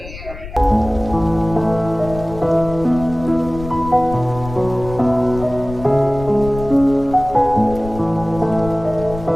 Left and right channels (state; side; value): noise; left; rumble, 13 dB below the sound